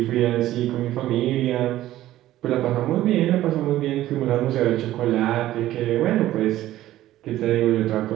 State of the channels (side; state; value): left; quieter; 14.4 dB